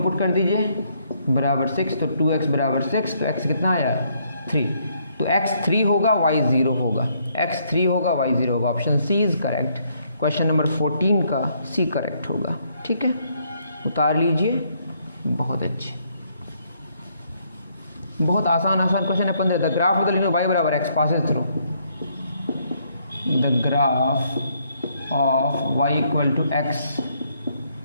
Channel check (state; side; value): inverted; both; correlation -0.71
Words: पुट कर दीजिए बराबर 6, तो 2x बराबर 6, तो x कितना आया 3, तो x 3 होगा y 0 होगा, x 3 होगा y 0 होगा। Option C is correct. Question number 14 का सी करेक्ट होगा। ठीक है, उतार लीजिए, बहुत अच्छे, बहुत आसान क्वेश्चन है। 15, the graph of the linear y बराबर x passes through, the graph of y = x